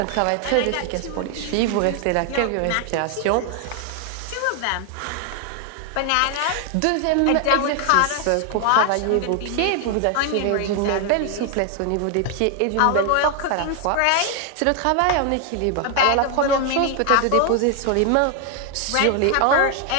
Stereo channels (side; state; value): both; different; correlation 0.00